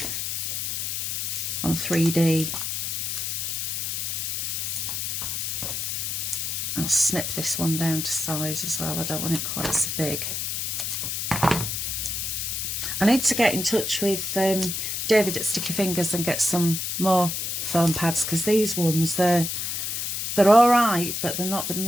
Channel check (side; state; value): left; noise; hiss, 2 dB below the sound